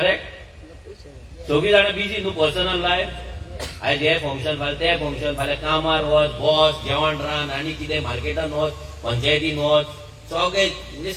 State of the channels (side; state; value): both; identical; correlation 1.00